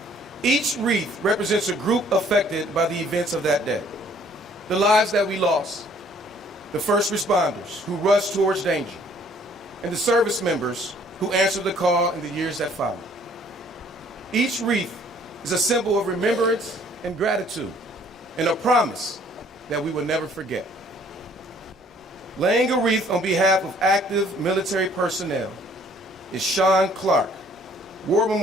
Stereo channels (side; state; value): both; normal; correlation 0.59